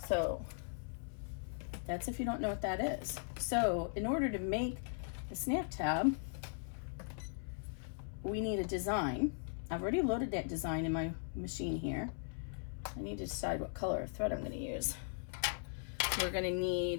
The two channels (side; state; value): right; silent; 52 dB below the other